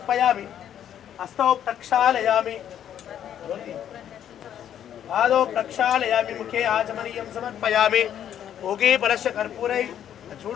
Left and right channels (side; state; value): right; quieter; 10.0 dB